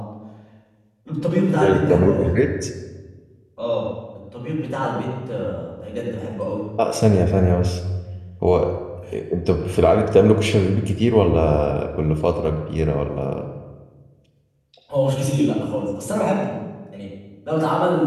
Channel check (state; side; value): identical; both; correlation 1.00